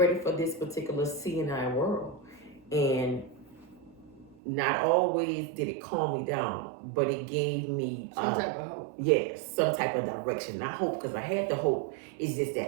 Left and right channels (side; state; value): left; drops out; at 4.4 s